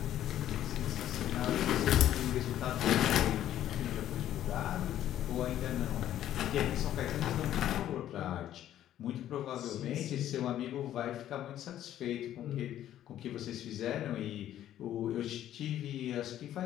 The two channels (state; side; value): quieter; right; 11.9 dB